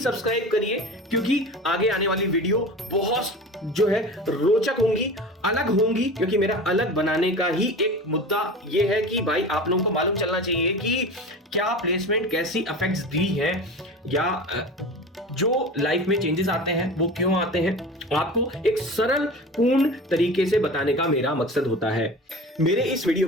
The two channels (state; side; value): normal; both; correlation 0.33